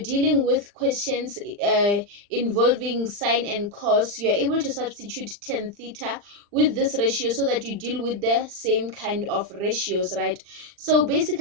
with questions involving sine and cos, you're able to substitute tan theta with this ratio so that you deal with the same kind of ratios, right? So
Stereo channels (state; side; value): late; left; 39 ms